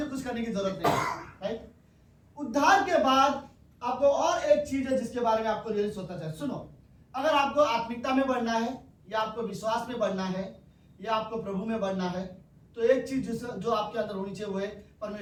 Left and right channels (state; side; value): identical; both; correlation 1.00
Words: कुछ करने की जरूरत नहीं है। राइट, उद्धार के बाद आपको और एक चीज है जिसके बारे में आपको रियली सोचना चाहिए। सुनो, अगर आपको आत्मिकता में बढ़ना है या आपको विश्वास में बढ़ना है या आपको प्रभु में बढ़ना है, तो एक चीज जो आपके अंदर होनी चाहिए वो है